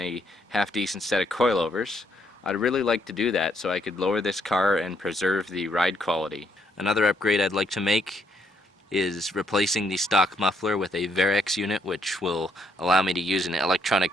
a half-decent set of coilovers, I'd really like to do that so I could lower this car and preserve the ride quality. Another upgrade I'd like to make is replacing the stock muffler with a Varex unit, which will allow me to use an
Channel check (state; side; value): normal; both; correlation 0.72